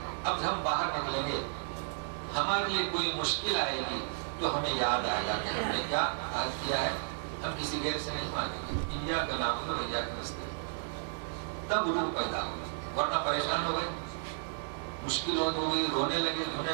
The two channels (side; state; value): left; silent; 56 dB below the other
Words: اب ہم باہر نکلیں گے، ہمارے لیے کوئی مشکل آئے گی تو ہمیں یاد آئے گا کہ ہم نے کیا عہد کیا ہے. ہم کسی غیر سے نہیں مانگیں گے، ایاک نعبد و ایاک نستعین. تب روح پیدا ہوگا، ورنہ پریشان ہو گئے، مشکل ہو گئی، رونے لگے دھونے